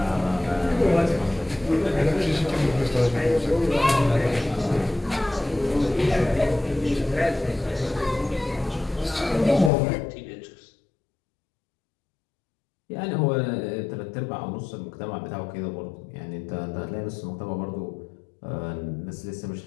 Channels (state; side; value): drops out; right; at 9.7 s